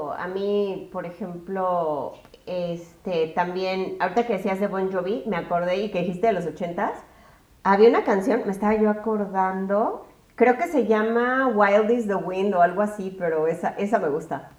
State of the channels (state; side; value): identical; both; correlation 1.00